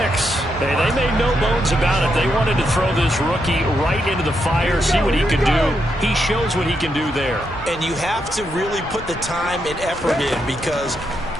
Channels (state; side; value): normal; both; correlation 0.81